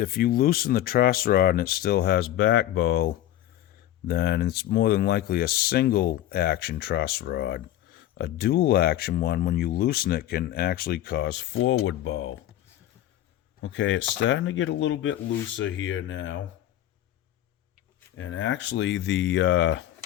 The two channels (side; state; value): right; quieter; 13.0 dB